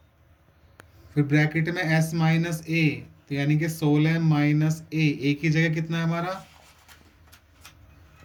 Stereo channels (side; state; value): both; identical; correlation 1.00